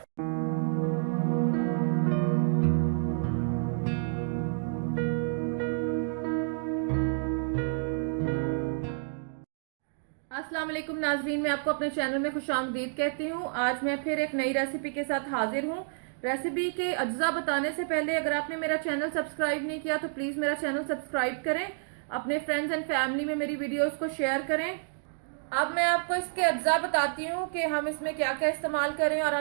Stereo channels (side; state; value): left; silent; digital silence